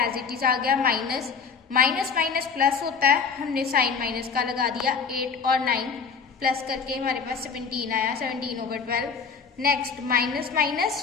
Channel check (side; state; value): right; quieter; 5.8 dB